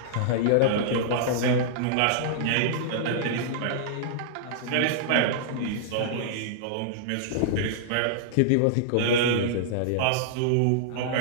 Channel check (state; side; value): different; both; correlation -0.02